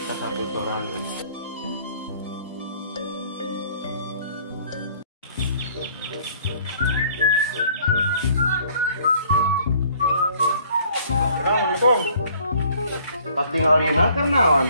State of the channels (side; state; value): both; inverted; correlation -0.57